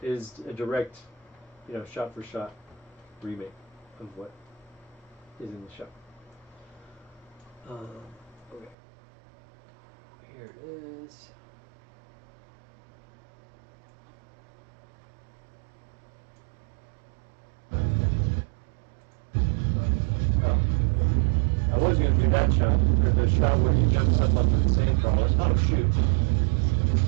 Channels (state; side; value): drops out; left; at 8.8 s